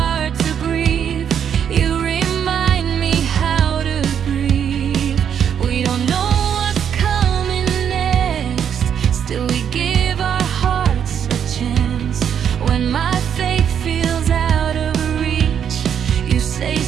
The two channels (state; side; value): quieter; left; 8.4 dB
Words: to grieve, you remind me how to breathe. We don't know what's coming next, still we give our hearts a chance. When my faith feels out of reach, you say